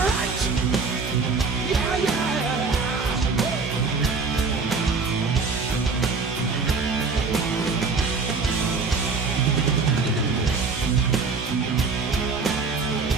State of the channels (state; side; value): quieter; left; 4.5 dB